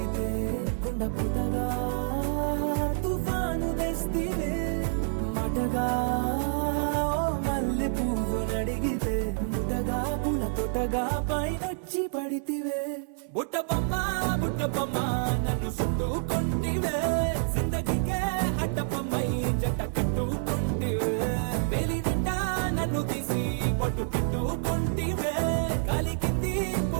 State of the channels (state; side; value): silent; left; 59 dB below the other